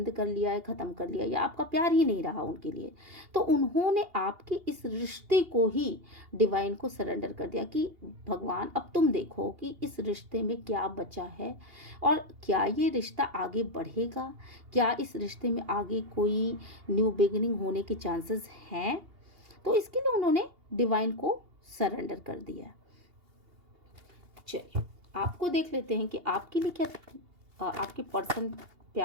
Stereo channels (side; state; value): left; late; 2.8 ms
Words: कर लिया है, ख़त्म कर लिया, या आपका प्यार ही नहीं रहा उनके लिए। तो उन्होंने आपके इस रिश्ते को ही डिवाइन को सरेंडर कर दिया कि भगवान अब तुम देखो कि इस रिश्ते में क्या बचा है और क्या ये रिश्ता आगे बढ़ेगा, क्या इस रिश्ते में आगे कोई न्यू बिगिनिंग होने के चांसेस हैं। तो इसके लिए उन्होंने डिवाइन को सरेंडर कर दिया। चलिए आपको देख लेते हैं कि आपके लिए क्या आपके पर्सन